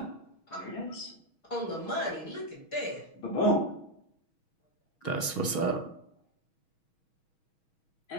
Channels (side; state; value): right; late; 6.3 ms